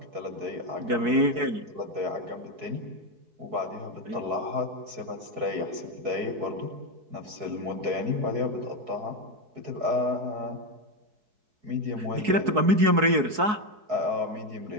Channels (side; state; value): left; late; 4.7 ms